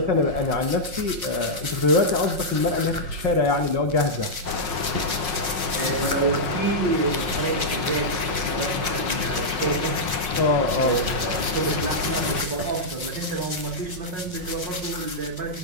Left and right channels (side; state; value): left; late; 5.5 ms